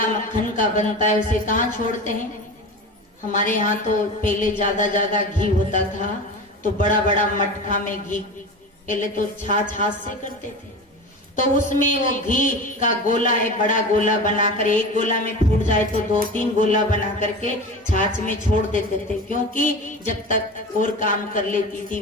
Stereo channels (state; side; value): normal; both; correlation 0.30